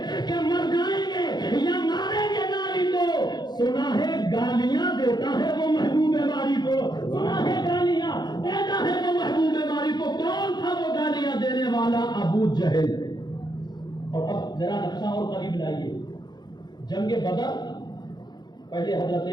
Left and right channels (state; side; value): late; right; 0.21 ms